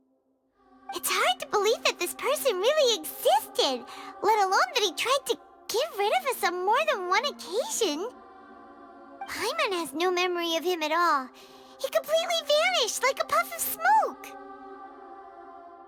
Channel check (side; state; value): both; identical; correlation 1.00